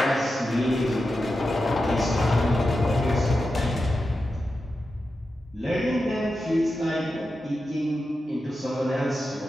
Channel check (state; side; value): normal; both; correlation 0.90